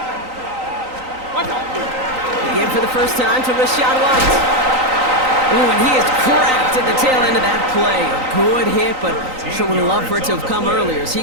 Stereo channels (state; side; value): late; left; 3.9 ms